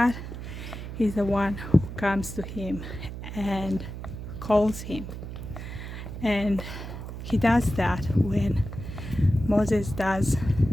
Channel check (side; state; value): right; noise; hum, 9 dB below the sound